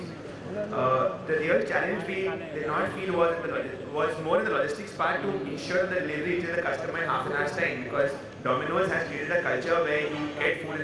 The real challenge we did not feel was more in the logistics part to ensure the delivery reaches the customer in half an hour's time, because Domino's has created a culture where you get food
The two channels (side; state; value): both; identical; correlation 1.00